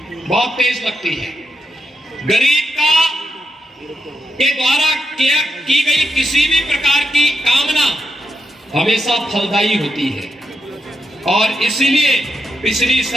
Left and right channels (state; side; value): normal; both; correlation 0.84